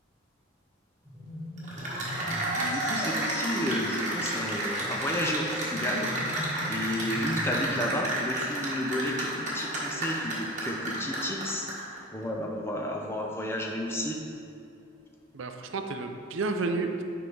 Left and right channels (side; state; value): both; normal; correlation 0.29